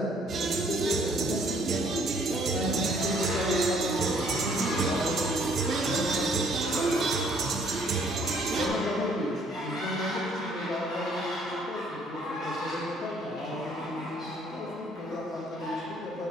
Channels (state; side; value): normal; both; correlation 0.62